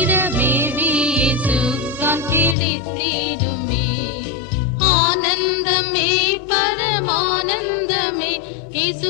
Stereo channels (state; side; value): drops out; right; at 2.6 s